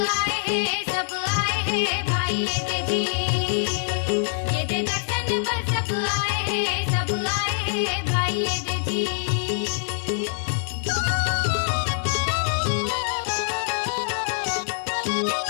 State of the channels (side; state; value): right; silent; 62 dB below the other